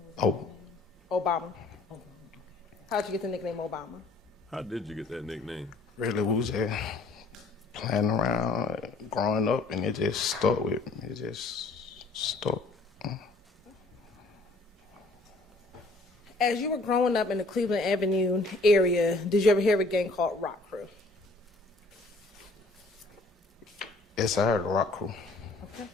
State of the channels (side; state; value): right; quieter; 3.2 dB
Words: Oh, Obama? How'd you get the nickname Obama? How did you get that nickname? really, we was just playing around, growing up, and it just stuck with me. It just stuck. As you were growing up in the Cleveland Avenue area, did you ever hear of a gang called Rock Crew? Yes, I heard the Rock Crew. Okay.